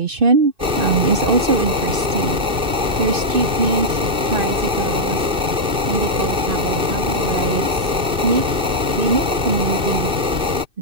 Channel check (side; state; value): left; late; 2.6 ms